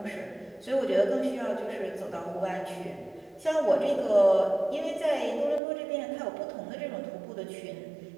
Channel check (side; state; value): left; drops out; at 5.6 s